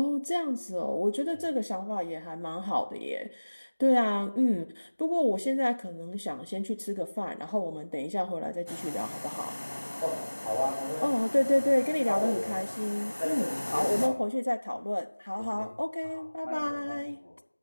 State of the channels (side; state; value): both; inverted; correlation -1.00